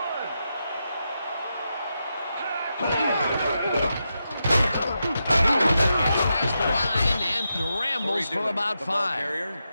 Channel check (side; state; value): both; inverted; correlation -0.86